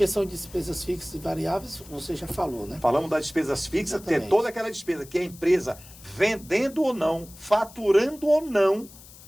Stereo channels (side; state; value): left; noise; hiss, 20 dB below the sound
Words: são despesas fixas e variáveis, você já falou, né? Falamos das despesas fixas, Exatamente. ter toda aquela despesa que a empresa, vendendo ou não, faturando ou não,